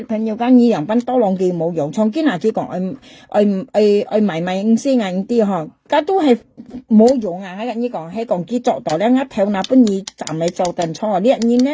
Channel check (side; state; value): both; identical; correlation 1.00